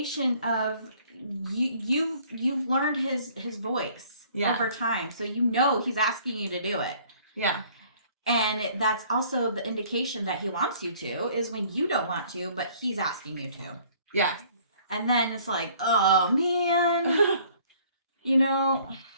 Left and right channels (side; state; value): both; inverted; correlation -0.57